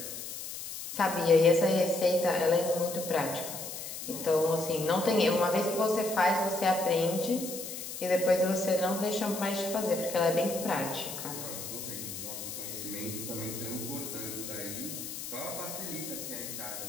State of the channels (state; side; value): noise; left; hiss, 8 dB below the sound